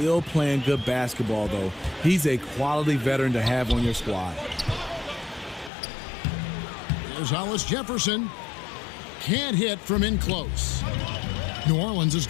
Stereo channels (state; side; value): drops out; right; at 5.7 s